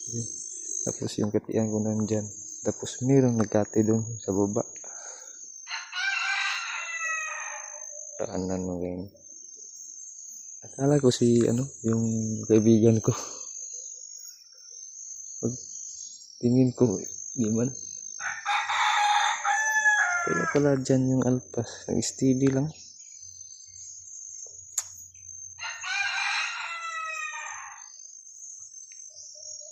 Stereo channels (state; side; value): identical; both; correlation 1.00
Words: Tapos yung katian ko nandyan. Tapos mayroong nagkati dun sa baba. Taanan mo ganyan. Akala ko si ano yung kaibigan ko. Pag tingin ko di man. Kaya pala dyan yung alpas. Nag-steady lang.